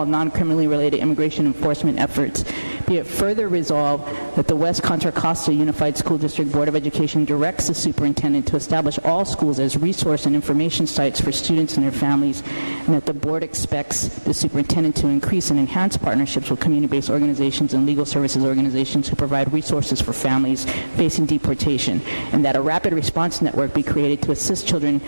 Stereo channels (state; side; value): inverted; both; correlation -1.00